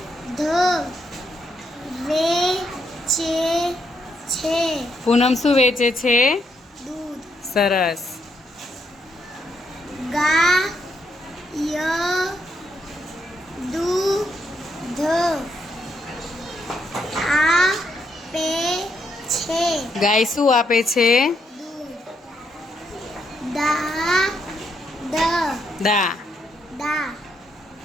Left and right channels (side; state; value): both; normal; correlation 0.77